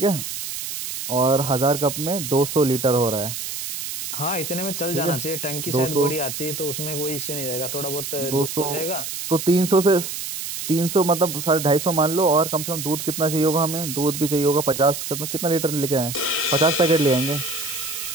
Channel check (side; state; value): right; noise; hiss, 6 dB below the sound